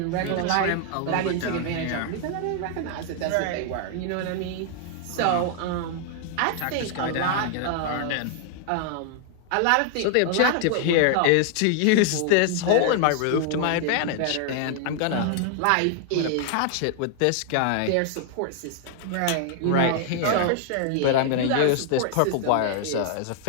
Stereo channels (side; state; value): both; different; correlation 0.00